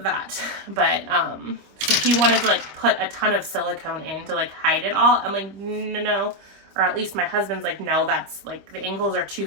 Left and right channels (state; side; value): late; left; 25 ms